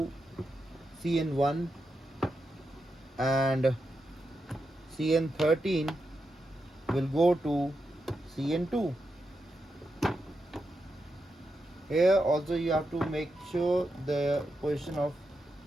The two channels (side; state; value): both; normal; correlation 0.86